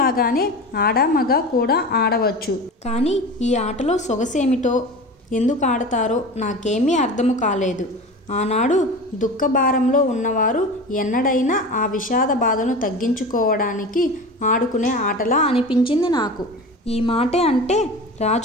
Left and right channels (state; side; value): normal; both; correlation 0.32